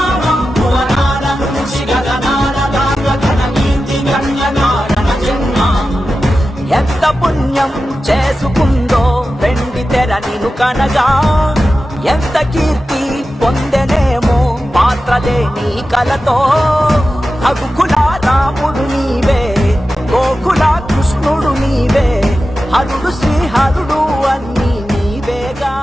భువనాల నుంచి గగనాల దాకా తన కీర్తి గణ్య కారణ జన్మ. ఎంత పుణ్యం చేసుకుందో వెండి తెర నిను కనగా, ఎంత కీర్తి పొందెనేమో పాత్రలేని కలతో. రఘుకుల రాముడు నీవే, గోకుల కృష్ణుడు నీవే, హరుడు శ్రీహరుడు అన్నీ నీవేగా.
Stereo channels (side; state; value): both; normal; correlation 0.93